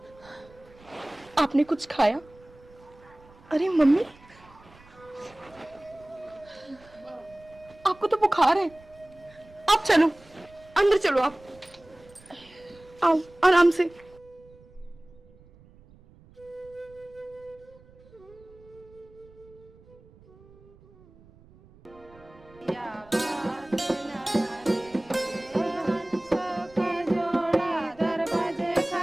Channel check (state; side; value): noise; right; rumble, 25 dB below the sound